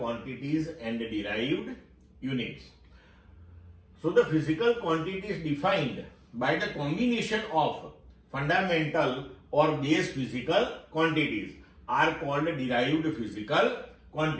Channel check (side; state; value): both; identical; correlation 1.00